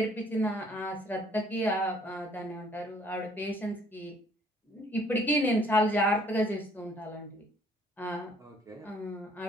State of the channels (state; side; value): normal; both; correlation 0.60